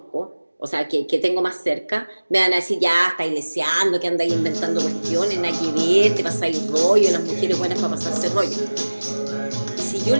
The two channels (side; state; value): both; inverted; correlation -1.00